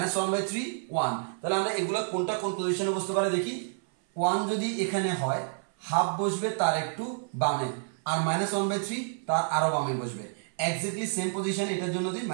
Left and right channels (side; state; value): left; silent; 56 dB below the other